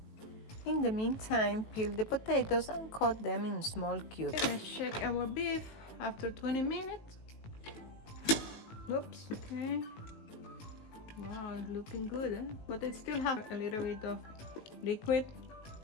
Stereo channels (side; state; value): right; late; 18 ms